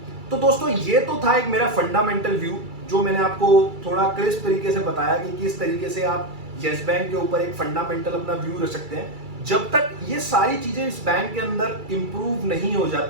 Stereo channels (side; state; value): left; late; 2.3 ms